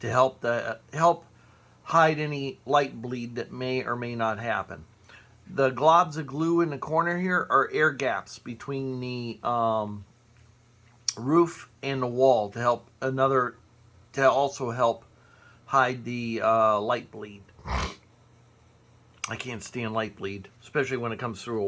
help hide any light bleed that may or may not happen. The globs of glue in the corner here are air gaps between the roof and the wall to also help hide the light bleed. I can't stand light bleed, especially when it comes through a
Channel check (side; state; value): both; identical; correlation 1.00